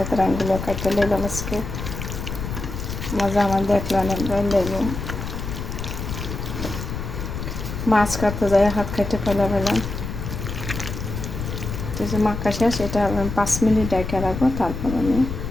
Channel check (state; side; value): noise; left; rumble, 6 dB below the sound